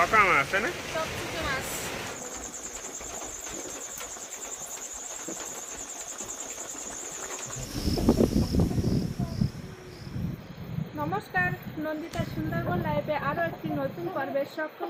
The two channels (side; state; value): both; identical; correlation 1.00